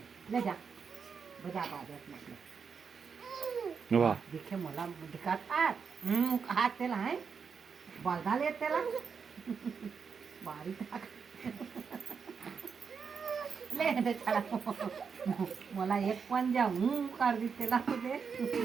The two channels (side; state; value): left; quieter; 6.0 dB